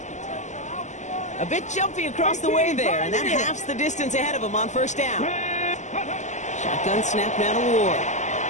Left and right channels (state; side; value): late; right; 0.34 ms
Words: A bit jumpy across the way there, and that halves the distance ahead of him on first down. Shotgun snap now to Ward.